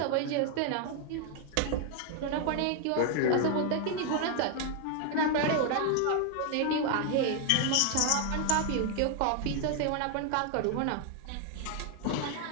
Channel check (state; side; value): different; both; correlation 0.00